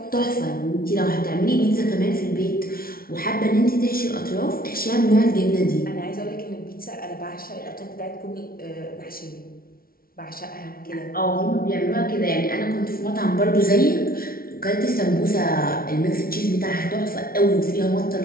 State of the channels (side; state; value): right; late; 0.43 ms